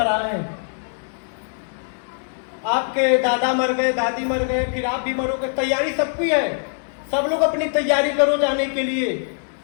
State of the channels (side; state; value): right; silent; digital silence